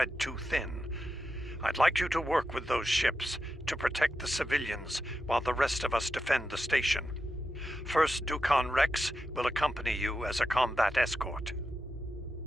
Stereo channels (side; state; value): both; normal; correlation 0.89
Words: too thin. I'd like you to work with those ships to protect the civilians while the rest of us defend the station. First Dukan Rex will accompany you as a combat escort.